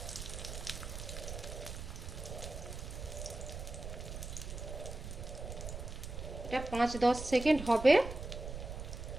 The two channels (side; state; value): right; noise; rumble, 8 dB below the sound